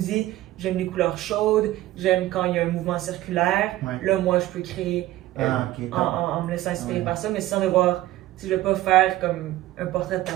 j'aime les couleurs chaudes, j'aime quand il y a un mouvement circulaire, là, moi je peux créer en me laissant inspirer par ça, mais sans devoir je vais pas faire comme un portrait de ta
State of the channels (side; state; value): left; quieter; 15.7 dB